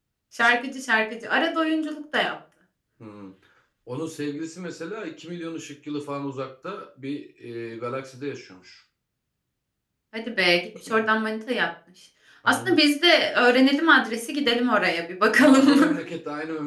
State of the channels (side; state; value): both; identical; correlation 1.00